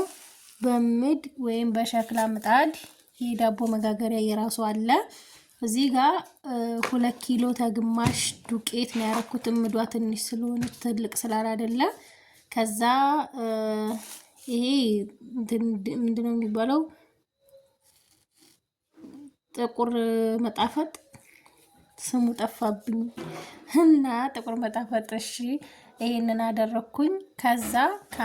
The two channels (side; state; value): both; identical; correlation 1.00